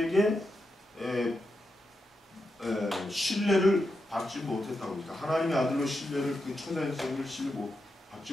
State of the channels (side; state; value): both; normal; correlation 0.87